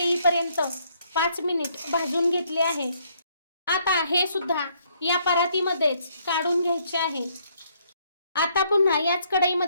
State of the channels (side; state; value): both; inverted; correlation -0.69